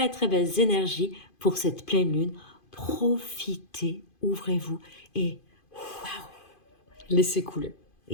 très belles énergies pour cette pleine lune. Profitez, ouvrez-vous et waouh! Laissez couler.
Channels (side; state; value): right; late; 2.5 ms